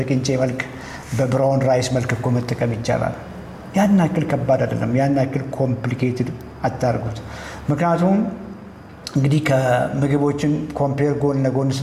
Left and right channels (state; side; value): identical; both; correlation 1.00